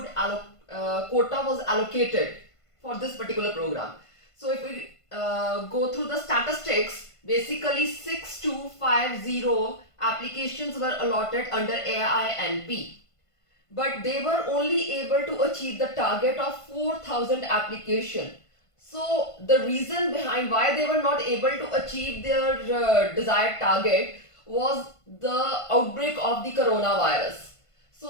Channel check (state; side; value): late; right; 1.5 ms